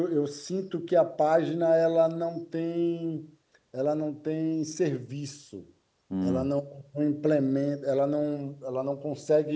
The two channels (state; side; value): identical; both; correlation 1.00